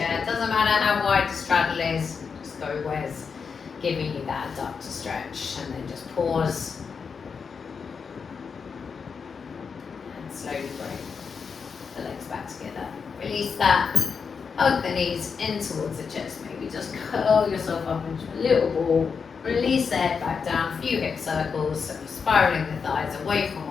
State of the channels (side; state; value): right; quieter; 5.8 dB